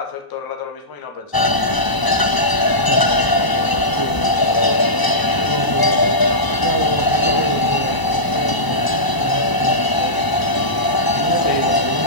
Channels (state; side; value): late; right; 1.0 ms